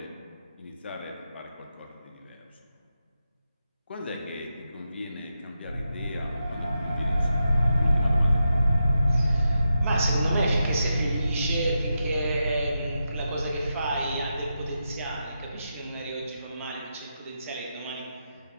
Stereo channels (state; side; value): inverted; both; correlation -0.86